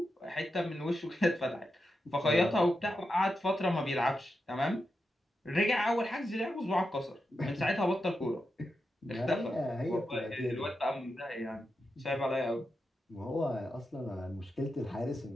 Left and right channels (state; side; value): normal; both; correlation 0.88